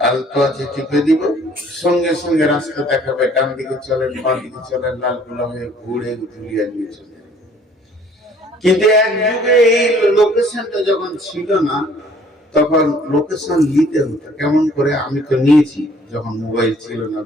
আলতো আছে টিপে দিব, সঙ্গে সঙ্গে রাস্তা দেখাবে, ডান দিকে চলেন বাঁ দিকে চলেন, লালগোলা হয়ে ঘুরে ধুলিয়ান নিয়ে চলে। কিন্তু এক যুগে এই লোকেশনটা যখন ছিল না তখন লোকেশন নিতে হতো কেমন করে। আমি তো নিয়েছি যখন মোবাইল ছিল না,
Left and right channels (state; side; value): normal; both; correlation 0.57